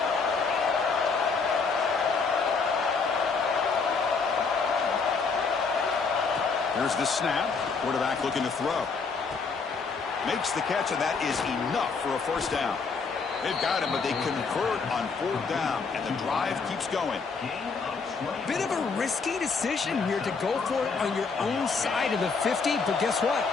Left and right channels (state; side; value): quieter; right; 4.9 dB